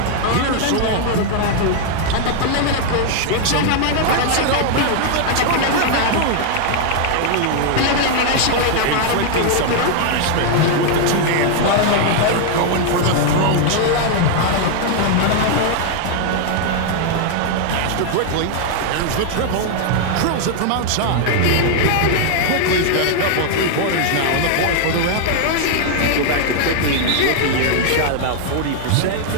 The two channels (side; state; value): both; different; correlation 0.00